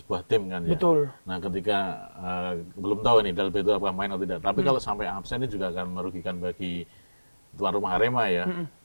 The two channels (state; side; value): inverted; both; correlation -1.00